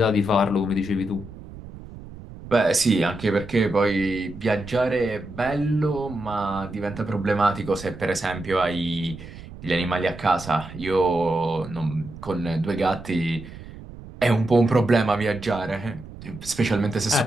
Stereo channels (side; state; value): right; noise; rumble, 15 dB below the sound